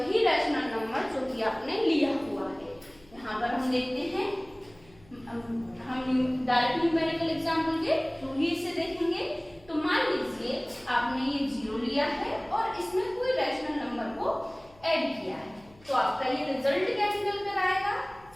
रैशनल नंबर जो कि आपने लिया हुआ है। यहाँ पर हम देखते हैं, हम डायरेक्ट न्यूमेरिकल एग्जाम्पल के थ्रू ही इसे देखेंगे। तो मान लीजिए आपने ये 0 लिया है और इसमें कोई रैशनल नंबर को ऐड किया है, तो आपका ये रिजल्ट क्या निकल कर आएगा।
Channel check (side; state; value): left; noise; hum, 27 dB below the sound